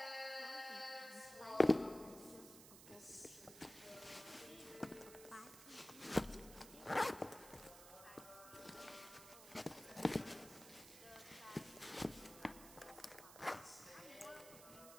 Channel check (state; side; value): noise; right; hiss, 15 dB below the sound